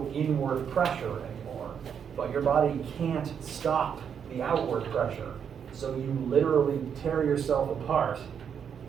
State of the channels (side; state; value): left; quieter; 7.6 dB